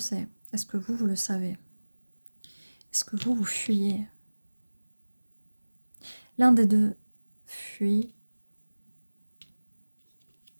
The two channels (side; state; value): both; inverted; correlation -1.00